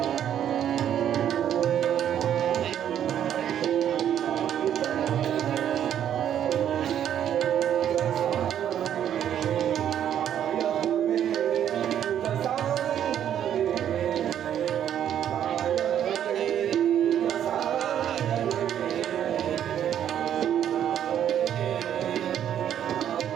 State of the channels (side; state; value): left; quieter; 10.0 dB